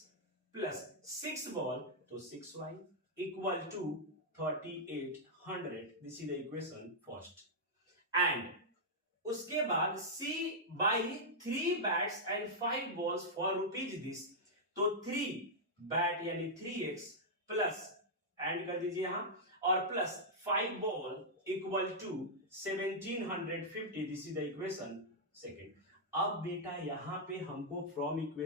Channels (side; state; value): both; normal; correlation -0.07